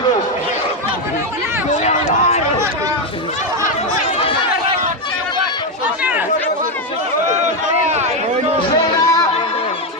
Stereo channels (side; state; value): both; normal; correlation 0.06